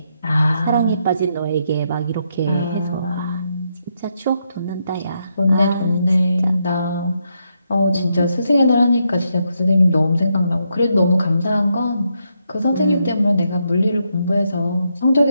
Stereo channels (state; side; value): inverted; both; correlation -0.80